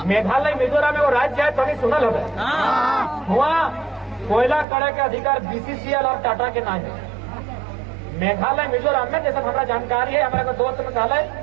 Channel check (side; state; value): left; drops out; at 4.7 s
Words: मेघालय मिजोरम में वो राज्य है, तो नहीं सुनल हो वहाँ कोयला करे के अधिकार बीसीसीएल और टाटा के नाम है। मेघालय मिजोरम में जैसे हमारा जानकारी है, हमारा दोस्त मेघालय,